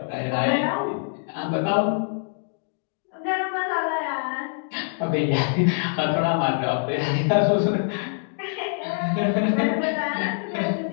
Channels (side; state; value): right; silent; 62 dB below the other